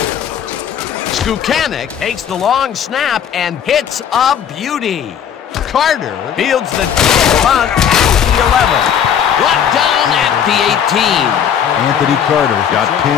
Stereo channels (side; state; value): right; quieter; 8.5 dB